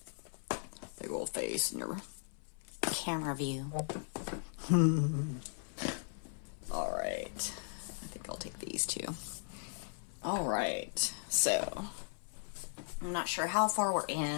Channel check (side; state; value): right; silent; 53 dB below the other